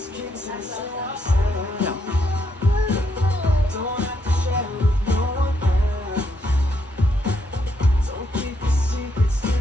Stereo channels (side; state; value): both; normal; correlation 0.76